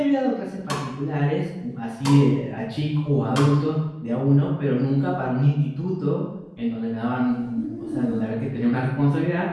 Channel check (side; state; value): both; identical; correlation 1.00